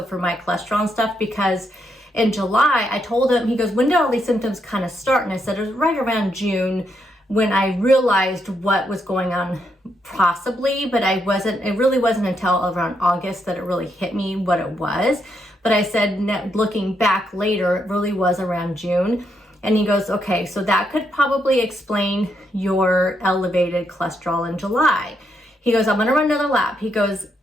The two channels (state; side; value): normal; both; correlation 0.79